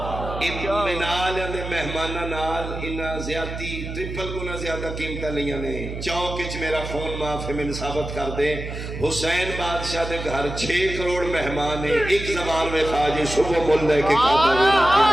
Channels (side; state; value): right; noise; hum, 7 dB below the sound